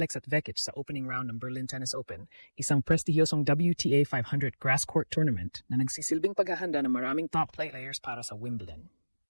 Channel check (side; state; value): both; inverted; correlation -1.00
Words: Vekic sa opening round ng Berlin Tennis Open, isang prestihiyosong WTA 500 grass court tournament na nagsisilbing paghahanda ng maraming top players para sa Wimbledon.